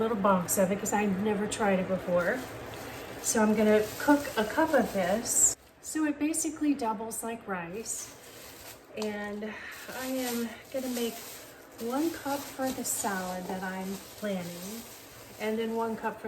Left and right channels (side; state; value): both; identical; correlation 1.00